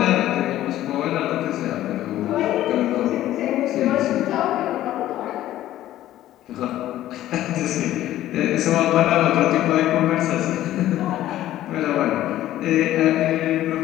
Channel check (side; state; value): right; quieter; 13.7 dB